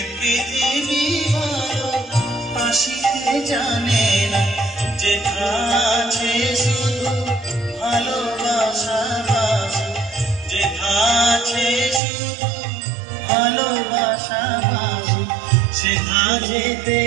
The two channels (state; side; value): drops out; left; at 12.0 s